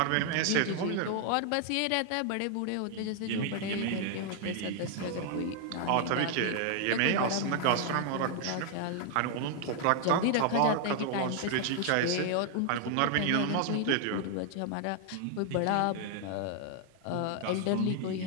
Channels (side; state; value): both; different; correlation 0.00